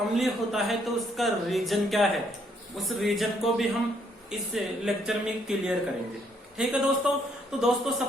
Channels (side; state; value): both; normal; correlation 0.69